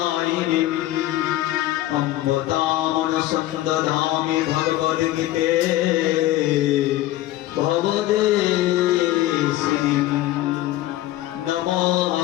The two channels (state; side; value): quieter; right; 15.3 dB